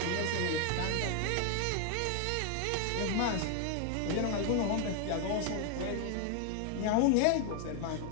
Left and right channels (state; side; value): different; both; correlation 0.00